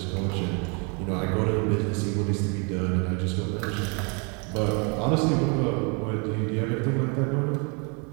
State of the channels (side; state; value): left; quieter; 34.2 dB